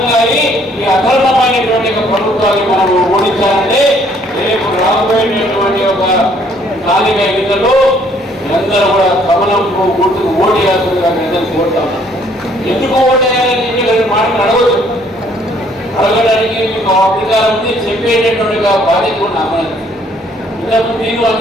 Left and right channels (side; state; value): both; normal; correlation 0.63